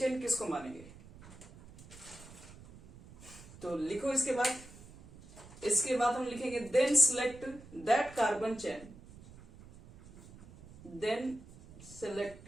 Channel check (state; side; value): noise; right; rumble, 19 dB below the sound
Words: किसको मानेंगे? तो लिखो इसके बाद हम लिखेंगे then select that carbon chain, then select